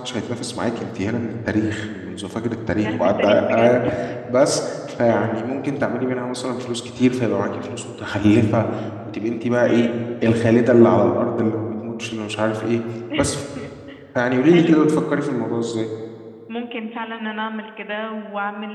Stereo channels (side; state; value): both; identical; correlation 1.00